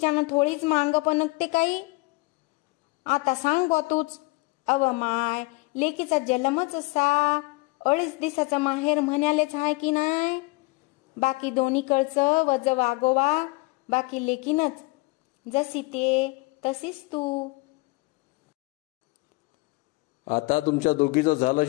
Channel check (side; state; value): right; quieter; 24.9 dB